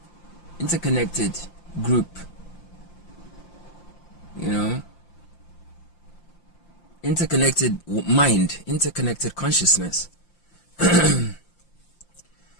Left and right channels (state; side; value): late; right; 5.8 ms